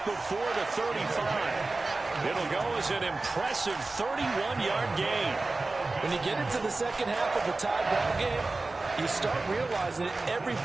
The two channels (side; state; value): left; quieter; 3.3 dB